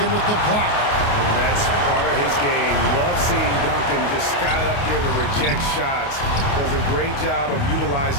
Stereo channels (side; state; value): right; late; 28 ms